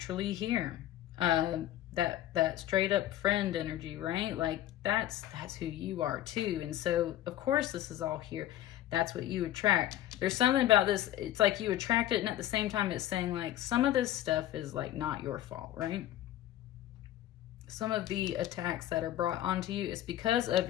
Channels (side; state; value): right; quieter; 13.2 dB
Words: here. That straight up friend energy, right? Like, that's who you are too. And so, of course, this is all here. That's what you attract. There's something about this, it's like you attract it, and at the same time it's saying, like, some of this stuff is, like, not your fault, right? Some of the attacks that are brought onto you is because